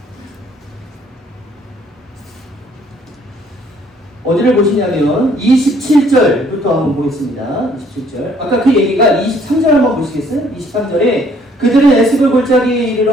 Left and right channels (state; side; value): normal; both; correlation 0.62